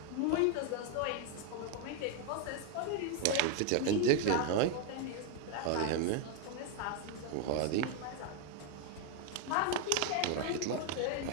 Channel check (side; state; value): both; different; correlation 0.01